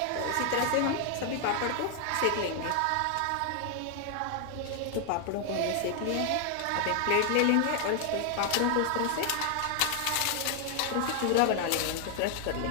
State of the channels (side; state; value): both; different; correlation 0.00